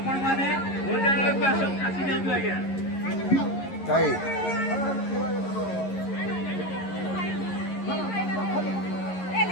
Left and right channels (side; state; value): right; late; 11 ms